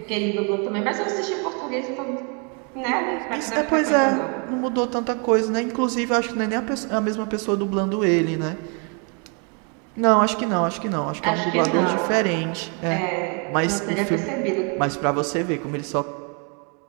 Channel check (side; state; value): left; quieter; 36.7 dB